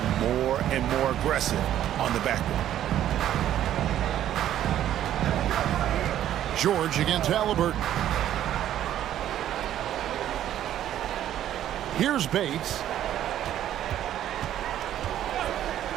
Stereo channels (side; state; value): left; quieter; 11.6 dB